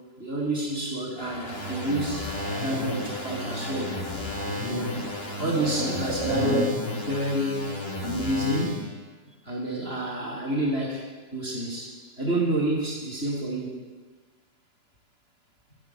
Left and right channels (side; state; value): right; late; 2.9 ms